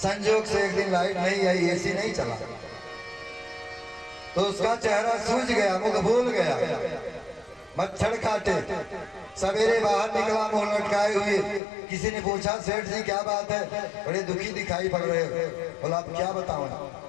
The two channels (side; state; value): right; drops out; at 11.6 s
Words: से एक दिन लाइट नहीं आई, एसी नहीं चला तो उसका चेहरा सूज गया, मुख भूल गया, मच्छर काटे। सवेरे बाहर निकला मुंह लटकाए हुए। किसी ने पूछा सेठ जी क्या बात है, बड़े दुखी दिखाई पड़ रहे हो। बोला आप क्या बताऊं,